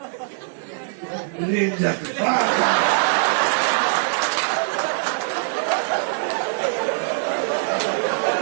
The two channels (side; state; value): left; silent; digital silence